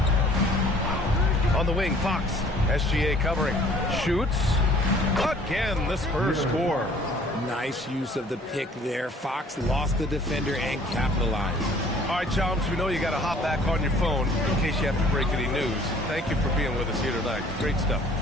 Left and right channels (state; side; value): normal; both; correlation 0.54